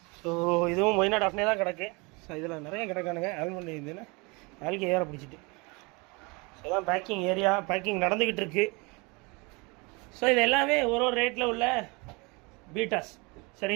ஸோ இதுவும் மொயினா டாஃப்னே தான் கிடக்கு. ஸோ இதில் நிறைய கிடக்கானுங்க. ஆல்மண்ட் இதுன்னு ஆல்கே ஏற பிடிச்சிட்டு. இதுதான் பேக்கிங் ஏரியா, பேக்கிங் நடந்துக்கிட்டு இருக்கு. ஸோ இது எல்லாமே ஒரு ரேட்டில் உள்ள பீட்டாஸ்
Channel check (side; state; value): left; quieter; 27.9 dB